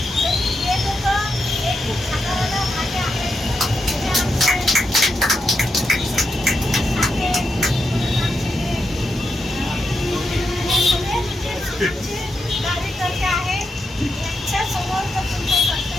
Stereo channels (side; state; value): both; normal; correlation 0.85